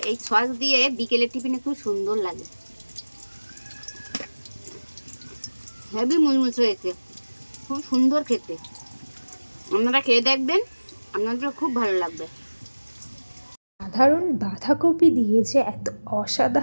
এই সস দিয়ে বিকেলের টিফিনে খুব সুন্দর লাগে। হেভি মুচমুচ হয়েছে, খুব সুন্দর খেতে। আপনারা খেয়ে দেখবেন, আপনাদের খুব ভালো লাগবে। সাধারণ বাঁধাকপি দিয়ে যে এত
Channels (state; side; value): inverted; both; correlation -1.00